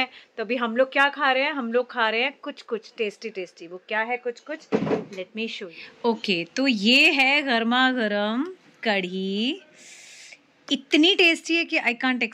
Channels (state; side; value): identical; both; correlation 1.00